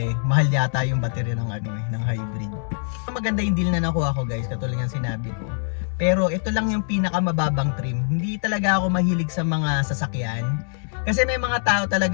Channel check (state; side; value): silent; right; digital silence